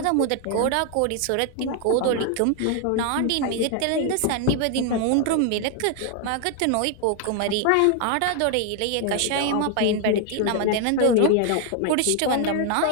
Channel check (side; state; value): both; different; correlation 0.00